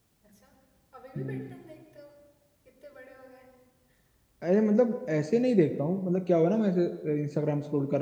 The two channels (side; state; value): both; identical; correlation 1.00